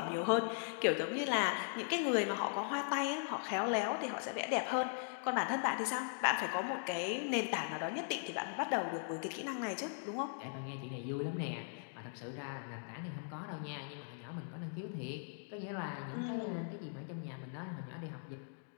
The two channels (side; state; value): right; silent; digital silence